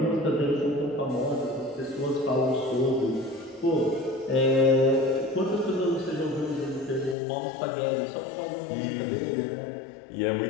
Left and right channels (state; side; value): drops out; right; at 7.2 s